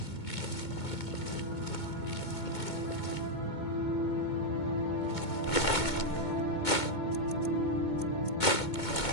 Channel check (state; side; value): late; right; 2.2 ms